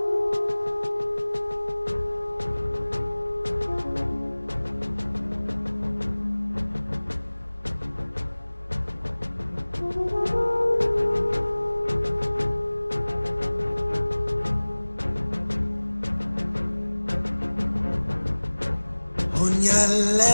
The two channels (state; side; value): inverted; both; correlation -1.00